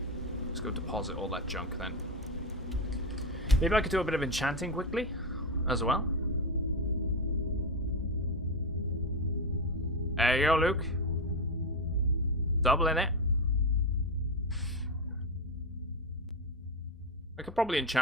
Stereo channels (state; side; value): normal; both; correlation 0.13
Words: Let's go deposit all that junk then. Maybe I could do a bit of enchanting quickly as well. There you go, Luke. Doubling it. I could probably